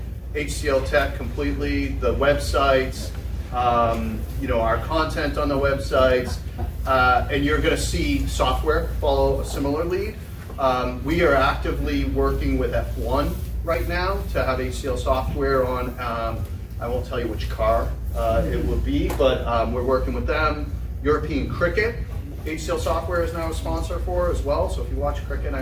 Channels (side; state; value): both; identical; correlation 1.00